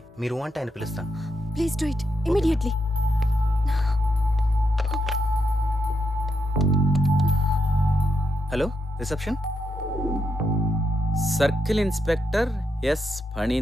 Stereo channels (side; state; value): both; normal; correlation 0.83